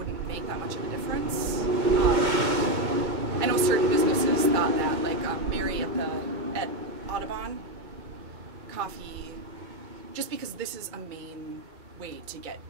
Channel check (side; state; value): left; late; 2.2 ms